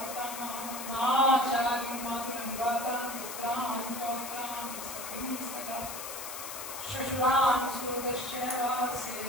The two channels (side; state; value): left; noise; hiss, 8 dB below the sound